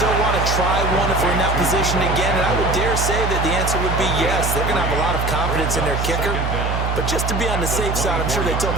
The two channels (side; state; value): right; noise; hum, 1 dB below the sound